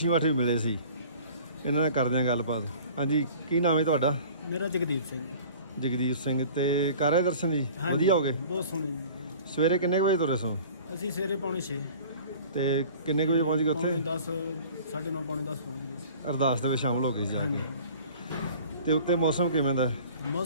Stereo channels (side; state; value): both; inverted; correlation -0.46